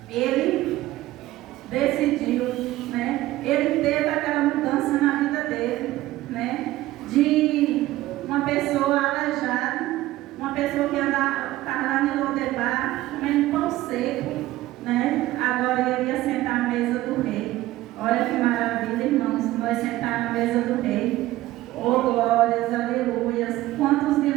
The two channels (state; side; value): quieter; left; 16.3 dB